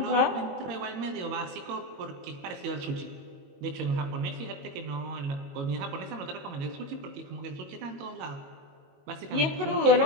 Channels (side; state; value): left; late; 22 ms